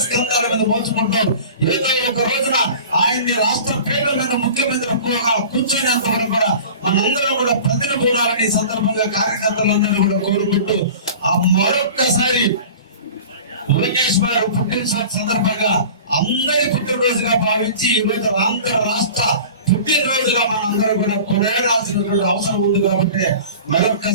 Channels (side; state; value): both; inverted; correlation -0.39